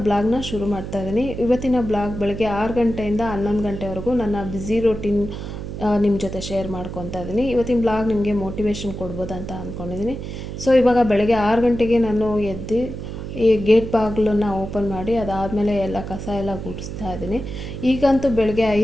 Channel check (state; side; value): noise; right; hum, 8 dB below the sound